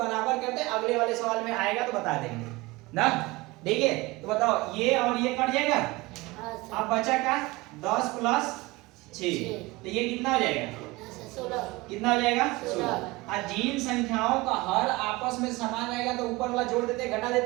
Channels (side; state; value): left; quieter; 22.0 dB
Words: करते अगले वाले सवाल में आएगा तो बता देंगे ना। ठीक है तो बताओ ये और ये कट जाएगा। अब बचा का 10 प्लस 6 तो ये कितना हो जाएगा? 16। कितना हो जाएगा? 16। और जिन संख्याओं का हर आपस में समान रहेगा तो ऊपर वाला जोड़ देते घटा